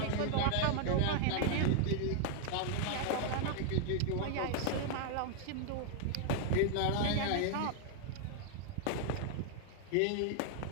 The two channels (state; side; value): different; both; correlation 0.00